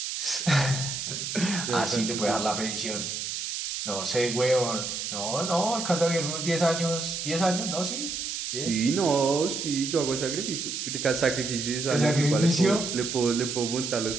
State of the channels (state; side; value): noise; right; hiss, 4 dB below the sound